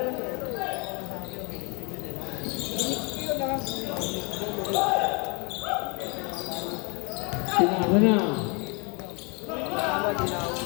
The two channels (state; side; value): quieter; right; 31.6 dB